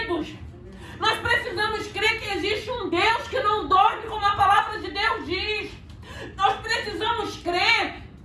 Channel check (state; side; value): identical; both; correlation 1.00